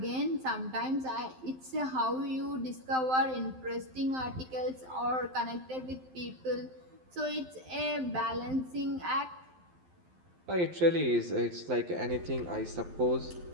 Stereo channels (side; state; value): left; late; 12 ms